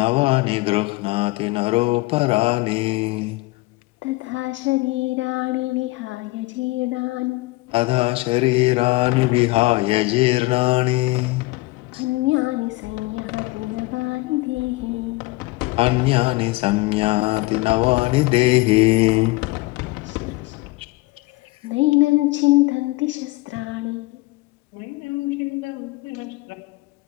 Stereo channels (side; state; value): right; quieter; 21.8 dB